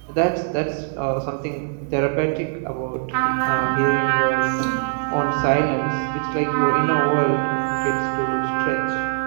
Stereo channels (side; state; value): left; silent; 64 dB below the other